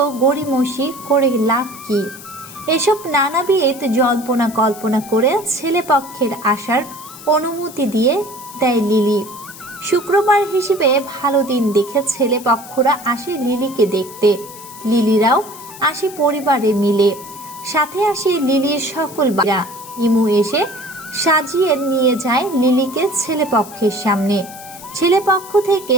গড়িমসি করে লাভ কি? এসব নানাবিধ জল্পনা কল্পনা করে ছেলে পক্ষের আসার অনুমতি দিয়ে দেয় লিলি। শুক্রবার হিসেবে ভালো দিন দেখে ছেলে পক্ষরা আসে লিলিকে দেখতে। লিলিরাও আসে পরিবারে মিলে, সাথে আসে লিলির সকল বাড়া। ইমু এসে সাজিয়ে নিয়ে যায় লিলিকে ছেলে পক্ষের সামনে। ছেলে পক্ষ থেকে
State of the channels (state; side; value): noise; left; hiss, 16 dB below the sound